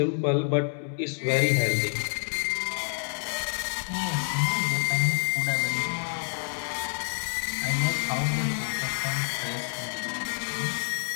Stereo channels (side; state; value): right; silent; 59 dB below the other